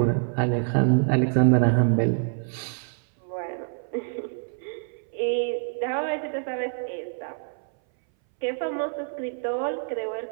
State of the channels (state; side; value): silent; left; 60 dB below the other